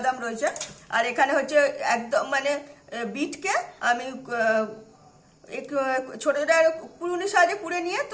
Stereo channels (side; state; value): both; identical; correlation 1.00